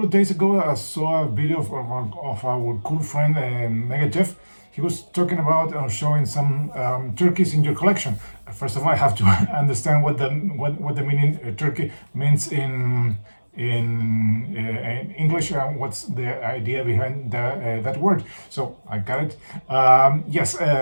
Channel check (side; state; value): both; inverted; correlation -1.00